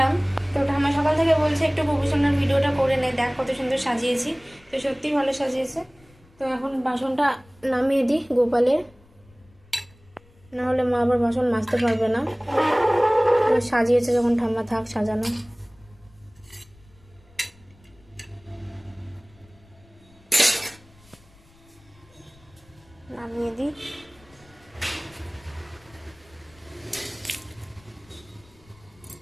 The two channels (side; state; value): left; noise; rumble, 28 dB below the sound